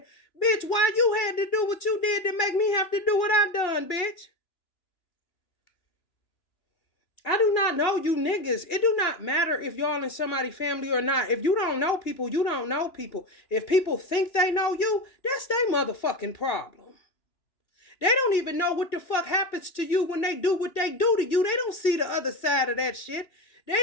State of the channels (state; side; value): late; right; 3.0 ms